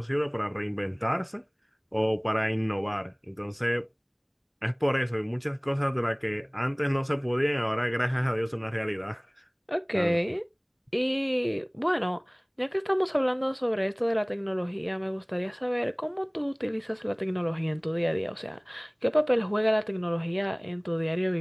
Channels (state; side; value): identical; both; correlation 1.00